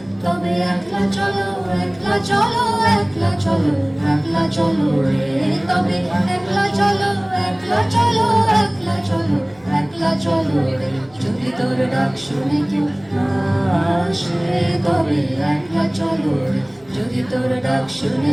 তবে একলা চলো, একলা চলো, একলা চলো, একলা চলো রে, তবে একলা চলো, একলা চলো, একলা চলো, একলা চলো রে, যদি তোর ডাক শুনে কেউ না আসে, তবে একলা চলো রে, যদি তোর ডাক শুনে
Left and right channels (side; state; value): left; noise; hum, 29 dB below the sound